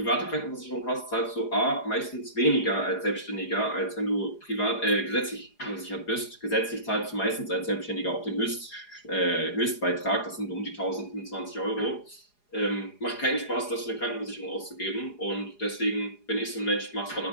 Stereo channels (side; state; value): right; late; 4.8 ms